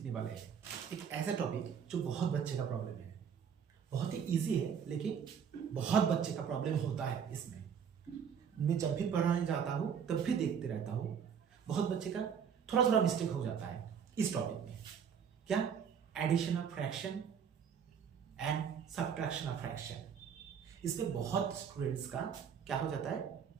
वाले हैं एक ऐसा टॉपिक जो बहुत बच्चे का प्रॉब्लम है। बहुत ही इजी है लेकिन बहुत बच्चे का प्रॉब्लम होता है इसमें। मैं जब भी पढ़ाने जाता हूँ तब भी देखते रहता हूँ, बहुत बच्चे का थोड़ा थोड़ा मिस्टेक हो जाता है इस टॉपिक में। क्या? Addition of fraction and subtraction of fraction. इसमें बहुत स्टूडेंट्स का क्या हो जाता है,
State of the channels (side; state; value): left; quieter; 7.4 dB